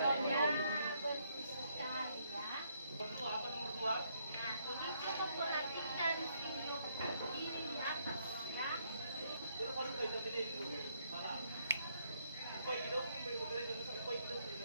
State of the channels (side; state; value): both; inverted; correlation -0.72